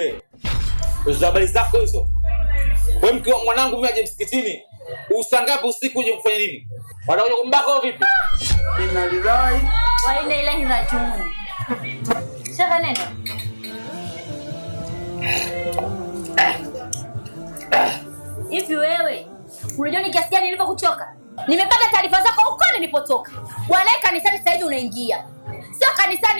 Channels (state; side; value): inverted; both; correlation -1.00